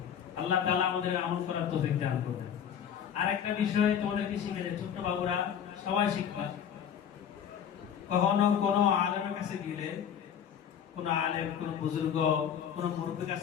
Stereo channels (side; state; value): right; quieter; 8.6 dB